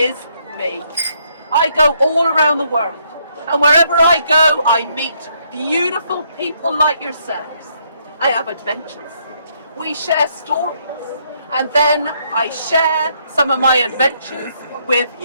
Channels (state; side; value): inverted; both; correlation -0.72